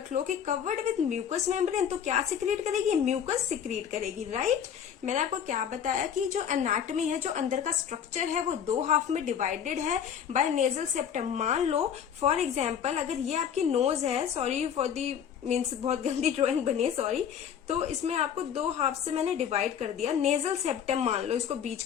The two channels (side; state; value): right; quieter; 8.4 dB